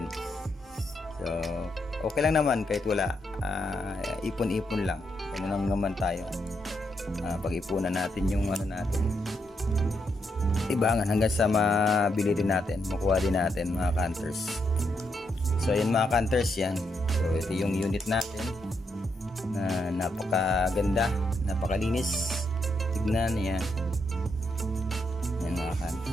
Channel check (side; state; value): both; normal; correlation 0.80